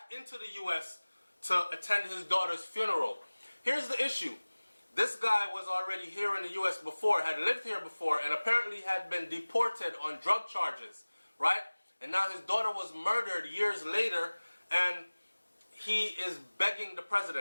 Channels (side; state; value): both; inverted; correlation -1.00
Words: into the U.S. to attend his daughter's funeral. Here's the issue. This guy was already here in the U.S. before, had lived here before, and apparently had been deported on drug charges, right? And now his daughter was murdered years later, and he is begging the